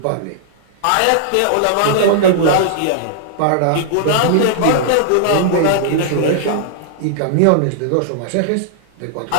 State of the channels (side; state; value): both; different; correlation -0.01